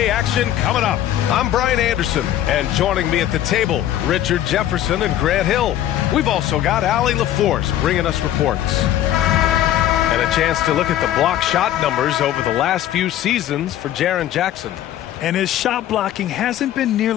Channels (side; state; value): right; quieter; 12.1 dB